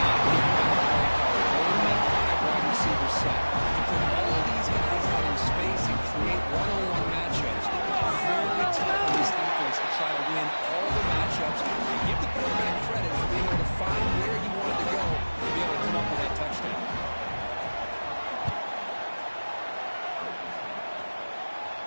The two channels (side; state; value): both; inverted; correlation -1.00